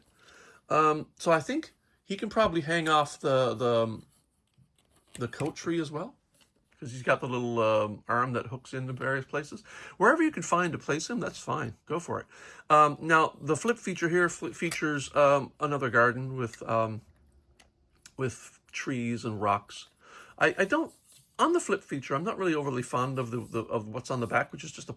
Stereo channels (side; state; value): both; identical; correlation 1.00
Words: So I think he can probably hang off the coat tree as well, because he's got the little arm that hooks into various places. Wherever you can find to place him, that's fine. Go for it. Now, the flip feature here features another garden with trees and rocks. I don't, on the flip feature, I'm not really overly fond of of what's on the back, which is just a